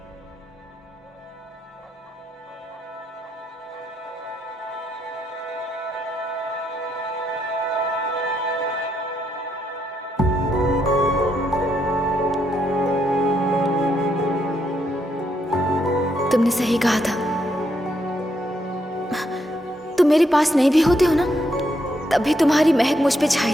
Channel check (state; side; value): normal; both; correlation 0.77